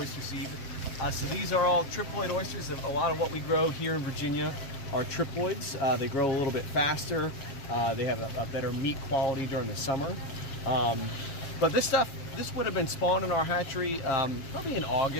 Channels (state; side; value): late; right; 7.5 ms